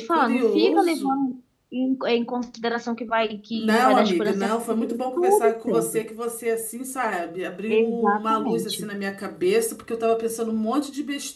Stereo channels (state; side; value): identical; both; correlation 1.00